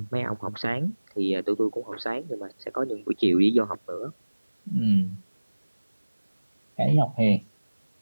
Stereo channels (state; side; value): inverted; both; correlation -1.00